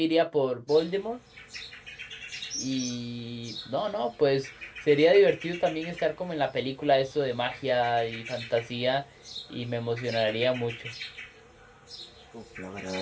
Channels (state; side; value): identical; both; correlation 1.00